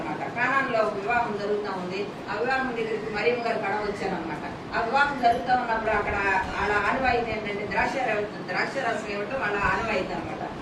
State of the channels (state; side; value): identical; both; correlation 1.00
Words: కానానులో ఒక వివాహం జరుగుతూ ఉంది. ఆ వివాహం దగ్గరికి మరియమ్మ గారు కడ వచ్చారనమాట. ఆ వివాహం జరుగుతూ ఉన్నప్పుడు అక్కడ వాళ్ళ ఆనవాయితీ ఏంటంటే ద్రాక్షరసం ఇవ్వటం వాళ్ళ ఆనవాయితీ అనమాట.